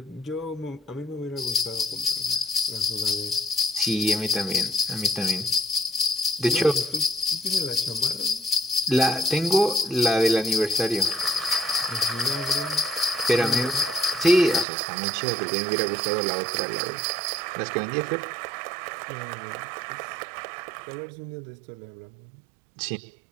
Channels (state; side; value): drops out; left; at 14.7 s